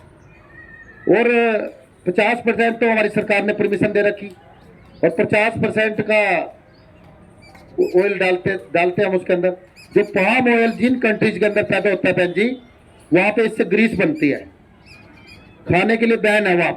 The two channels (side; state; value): both; identical; correlation 1.00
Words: और 50% तो हमारी सरकार ने परमिशन दे रखी, और 50% का ऑयल डालते हम उसके अंदर। जो पाम ऑयल जिन कंट्रीज के अंदर पैदा होता है बहन जी, वहां पे इससे ग्रीस बनती है, खाने के लिए बैन है वहां